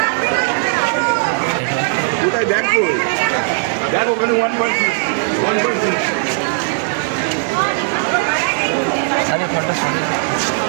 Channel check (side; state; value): left; silent; digital silence